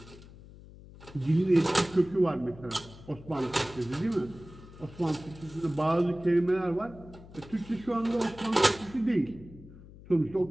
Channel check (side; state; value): left; noise; hum, 19 dB below the sound